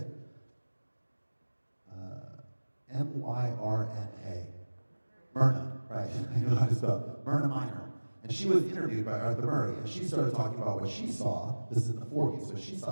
Myrna. Myrna, right? You know how to spell Myrna Minor. And she was interviewed by Arthur Murray, and she started talking about what she saw. This is in the 40s, what she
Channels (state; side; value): inverted; both; correlation -1.00